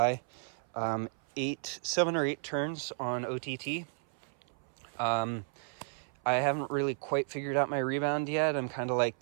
7 or 8 turns on OTT. I haven't really quite figured out my rebound yet. I'm kind of like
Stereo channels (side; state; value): left; silent; 56 dB below the other